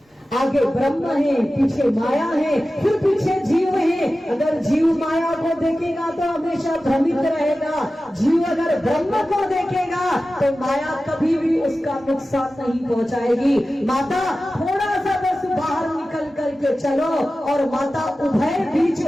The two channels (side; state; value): both; normal; correlation 0.95